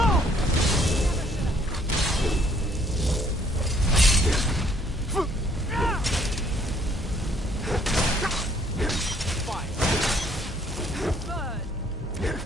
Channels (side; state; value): both; normal; correlation 0.63